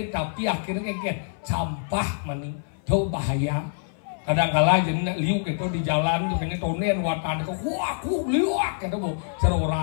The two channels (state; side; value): silent; right; 60 dB below the other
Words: tapi akhirnya kayak campah maning tuh bahaya kadang-kala jadi liuk itu di jalan juga ini tonen watan itu wah aku liuk itu mau